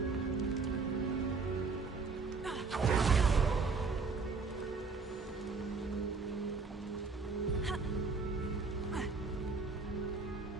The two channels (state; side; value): quieter; left; 4.4 dB